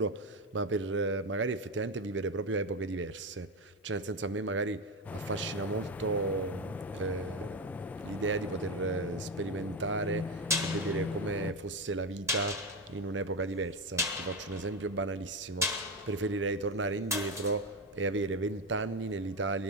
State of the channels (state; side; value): normal; both; correlation 0.14